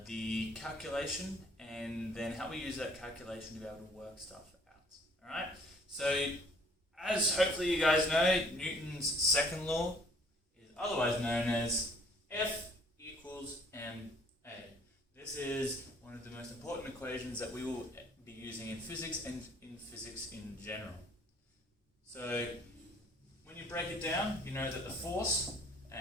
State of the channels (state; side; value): normal; both; correlation 0.59